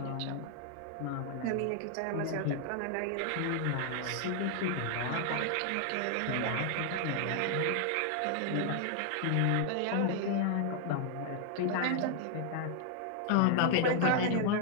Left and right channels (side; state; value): both; different; correlation 0.00